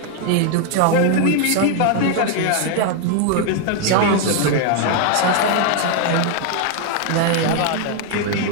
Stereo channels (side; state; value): both; different; correlation 0.00